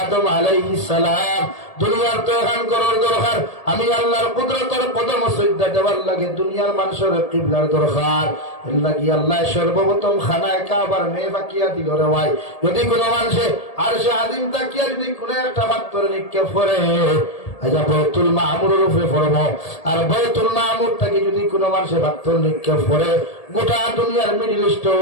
আদম আলাইহিস সালাম দুনিয়ার তো এখন করার দরকার, আমি আল্লাহর কুদরতের কদম সজদা দেওয়ার লাগে দুনিয়ার মানুষের কিবলার দরকার। এর লাগি আল্লাহ সর্বপ্রথম খানায় কাবার মেয়ে বাকিয়া দিল রে ভাই। যদি কোনো মানুষে আর সে আদিম তাকিয়া যদি কোনো একটা পাত্র নিক্ষেপ করে, আচ্ছা বয়তুল মামুরের উপরে পড়বো, আর বয়তুল মামুর থেকে যদি কোনো মানুষের পাত্র নিক্ষেপ করে, গোটা দুনিয়ার মিডিল ইস্ট,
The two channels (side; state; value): right; late; 1.8 ms